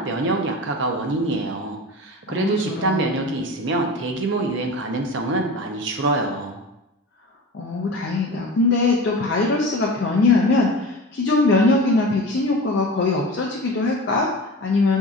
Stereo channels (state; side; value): normal; both; correlation 0.33